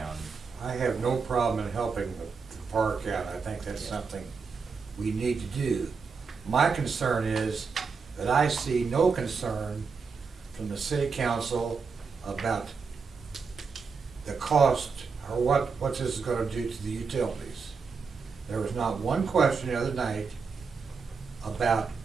I have no problem in helping the park out. I think that's something we need to do. My concern is that I see no concern from the city council about the cost or what this is gonna do to the utilities. There was not one question the other night about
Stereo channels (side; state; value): left; quieter; 5.2 dB